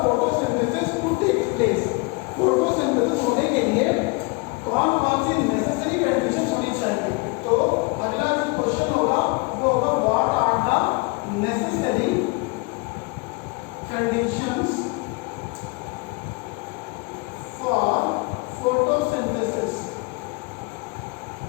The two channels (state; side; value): quieter; right; 27.8 dB